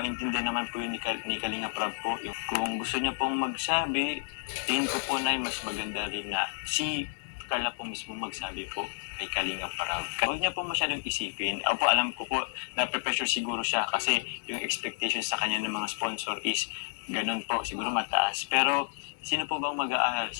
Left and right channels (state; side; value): silent; right; 57 dB below the other